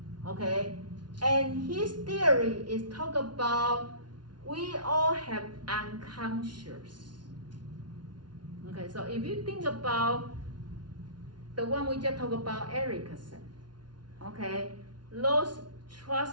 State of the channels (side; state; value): left; late; 0.70 ms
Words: Okay, and his theory is talk about we all have unconscious. Okay, so if you think about the one we just talked about, Erickson, okay, those